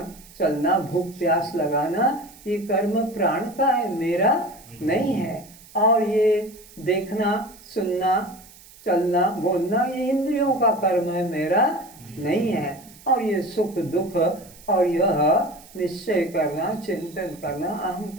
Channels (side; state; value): right; noise; hiss, 22 dB below the sound